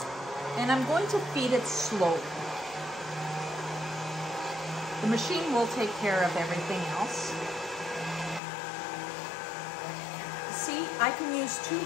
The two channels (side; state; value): right; drops out; at 8.4 s